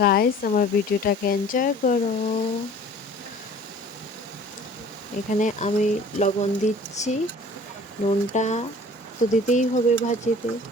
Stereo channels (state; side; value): normal; both; correlation 0.48